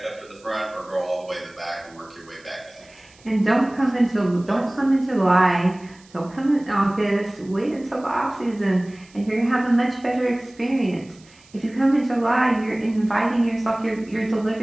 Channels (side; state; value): right; noise; hiss, 27 dB below the sound